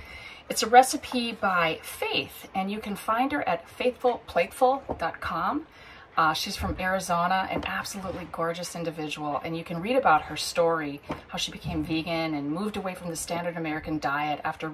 It's a recipe by Faith, and you can find her at faithfulplateful.com. She's from Arizona, an absolutely gorgeous individual, and you can read about her story, how she became vegan and moved away from the standard American diet after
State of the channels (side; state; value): both; identical; correlation 1.00